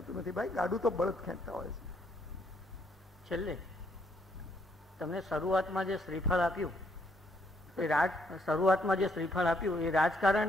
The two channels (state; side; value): normal; both; correlation 0.71